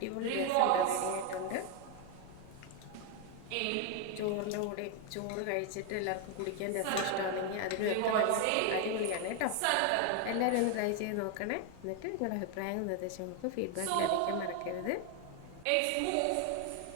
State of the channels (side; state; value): both; different; correlation 0.01